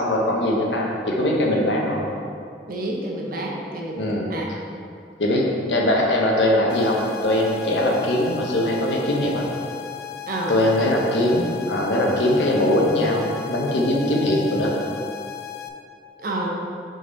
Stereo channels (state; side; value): normal; both; correlation 0.37